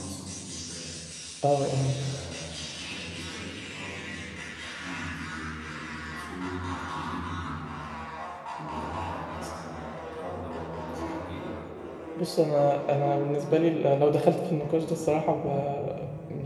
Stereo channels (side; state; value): both; identical; correlation 1.00